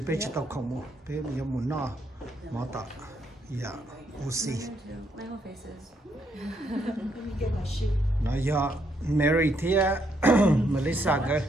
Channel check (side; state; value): both; normal; correlation 0.74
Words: chita komo. Be yamu na ma ta. Yeah, we'll see. My whole face is. Let me get my shoe. Now you're married here, Melissa. Girl.